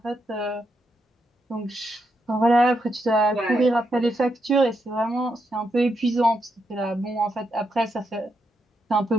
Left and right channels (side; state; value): both; normal; correlation 0.81